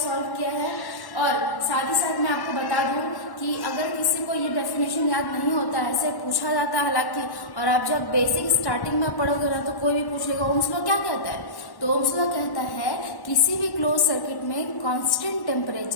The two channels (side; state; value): right; late; 1.1 ms